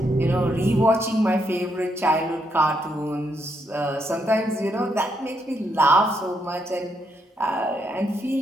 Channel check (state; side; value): normal; both; correlation 0.78